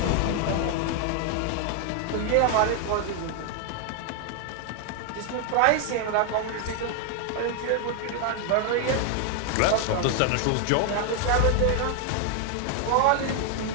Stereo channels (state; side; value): different; both; correlation 0.00